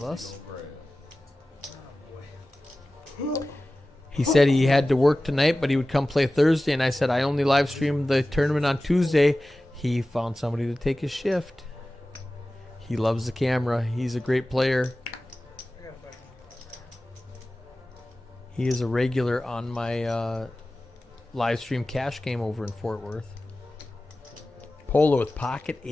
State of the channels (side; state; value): both; normal; correlation 0.96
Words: us. He said he had to work tonight, but he would come play Thursday, and I said I only live stream the tournament on Tuesday. He found somebody to take his shift. He loves the camera. He's a great player. He is a regular on my live stream cash game over in Fort Worth. Polo with pocket